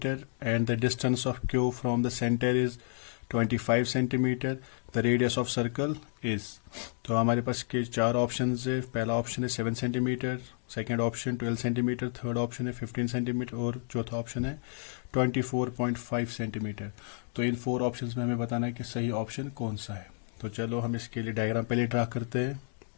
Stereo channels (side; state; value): right; silent; 57 dB below the other